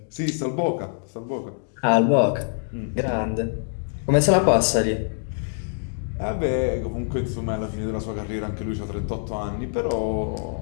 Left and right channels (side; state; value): right; silent; digital silence